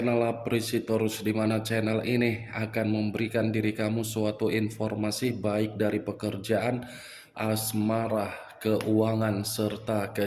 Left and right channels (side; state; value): both; identical; correlation 1.00